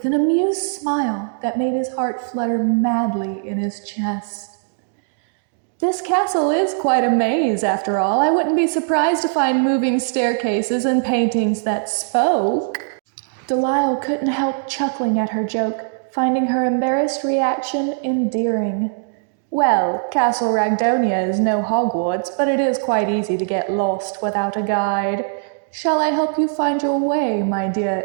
an amused smile that made his heart flutter madly in his chest. "This castle is quite a maze, after all. I wouldn't be surprised to find moving staircases and paintings that spoke." Delial couldn't help chuckling at her joke, finding her embarrassed reaction endearing. "Well, Castle Ragdonia is no Hogwarts, but it is quite easy to get lost without a guide. Shall I help you find your way, my dear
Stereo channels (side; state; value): left; silent; digital silence